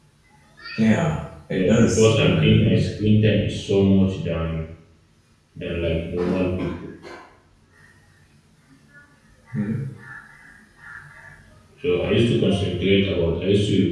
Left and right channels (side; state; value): both; identical; correlation 1.00